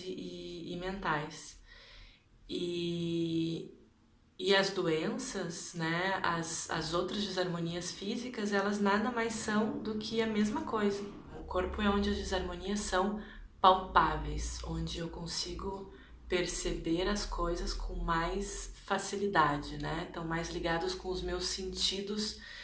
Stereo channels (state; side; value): identical; both; correlation 1.00